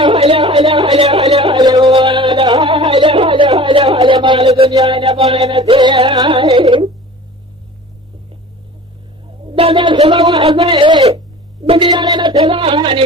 مال دنيانا ما نسيه بدل سبب أزاي بديانا تلاهاني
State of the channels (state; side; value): normal; both; correlation 0.41